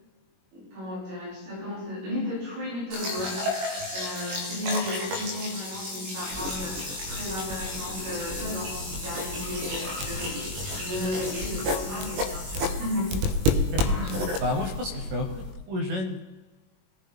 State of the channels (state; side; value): late; left; 21 ms